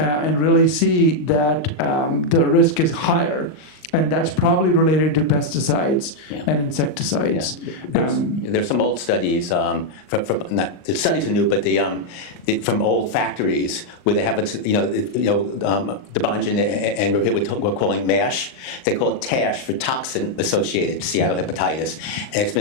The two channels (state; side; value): late; right; 39 ms